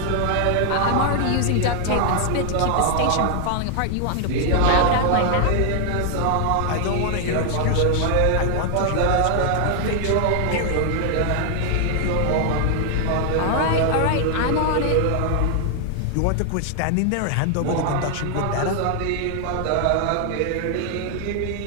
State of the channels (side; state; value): both; different; correlation 0.00